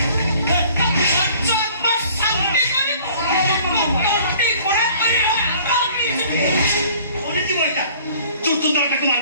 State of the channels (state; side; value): inverted; both; correlation -0.52